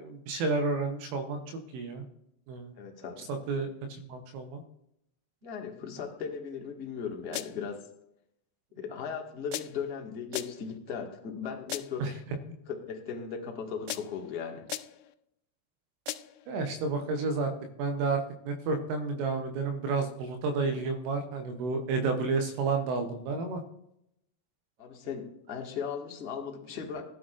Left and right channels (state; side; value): late; left; 23 ms